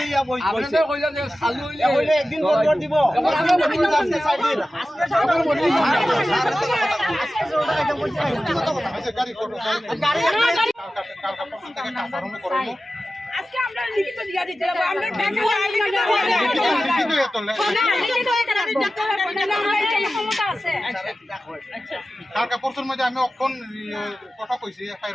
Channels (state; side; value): normal; both; correlation 0.94